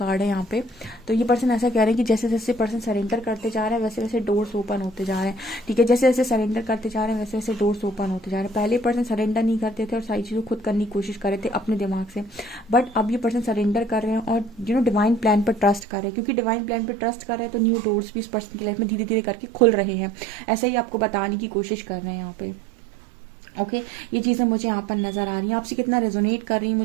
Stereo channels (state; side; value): drops out; left; at 15.9 s